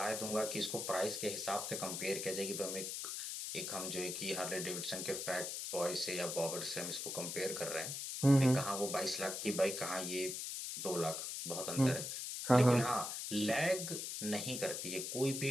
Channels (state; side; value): noise; left; hiss, 4 dB below the sound